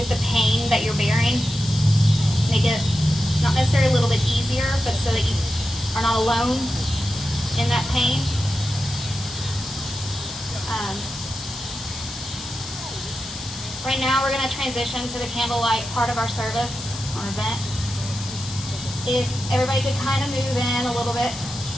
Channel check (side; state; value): left; noise; hiss, 11 dB below the sound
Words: the pain that you're bearing, make it not necessarily a little bit easier, but so that you are not alone in that pain. Right now we're going to transition to the candlelight part of our service or event. If everybody could kind of move in a little bit